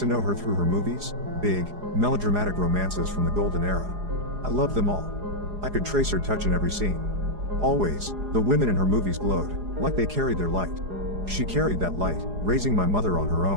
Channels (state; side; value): late; left; 4.8 ms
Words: know her through her movies, big, melodramatic romances from the golden era. I loved them all. I could trace her touch in every scene. Always, the women in her movies glowed, like they carried their light. She carried that light, raising my mother on her